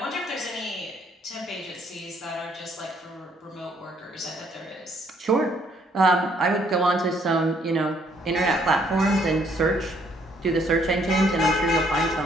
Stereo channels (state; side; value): normal; both; correlation 0.67